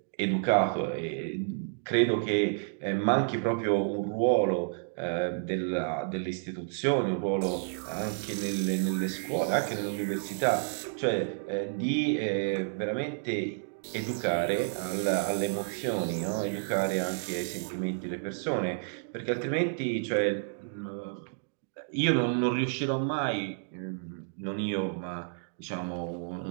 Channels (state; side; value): silent; left; digital silence